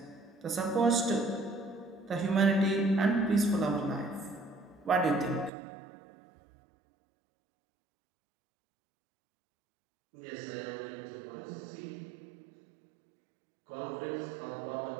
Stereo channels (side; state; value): left; drops out; at 5.5 s